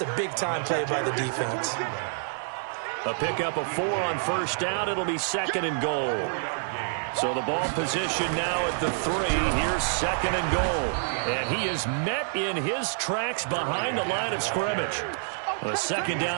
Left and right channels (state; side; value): silent; left; digital silence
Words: a big-time play by the defense. A pickup of 4 on first down. It'll be 2nd and goal. So the ball position now at the 3. Here's second and goal. And he is met in his tracks behind the line of scrimmage. A second